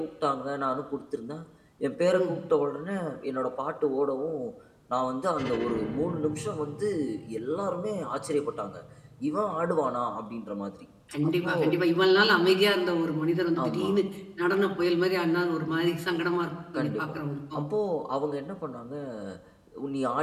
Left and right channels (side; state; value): both; identical; correlation 1.00